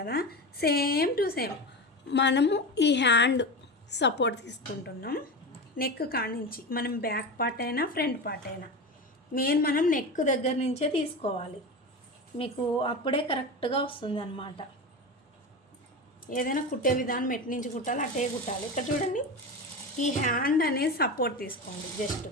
సేమ్ టు సేమ్ మనము ఈ హ్యాండ్ సపోర్ట్ తీసుకుంటున్నాం. నెక్ కానించి మనం బ్యాక్ పార్ట్ అయినా ఫ్రంట్ పార్ట్ అయినా మనం నెక్ దగ్గర నుంచే తీసుకోవాలి, మీకు అప్పుడే కరెక్ట్గా వస్తుంది అన్నమాట. ఏదైనా కుట్టే విధానం ఎటు నుంచి కుట్టాలి అటే కుట్టాలి. ఇక్కడ చూడండి, ఈ హ్యాండ్ అనేది సపోర్ట్ తీసుకోండి. జస్ట్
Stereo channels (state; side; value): normal; both; correlation 0.24